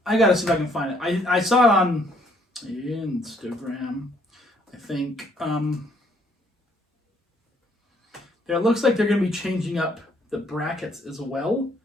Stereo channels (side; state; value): both; normal; correlation 0.66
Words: I gotta see if I can find it. I saw it on Instagram. I think. It looks like they're going to be changing up the brackets as well,